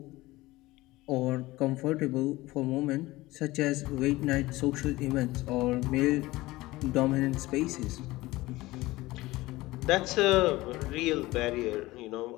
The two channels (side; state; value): right; quieter; 19.2 dB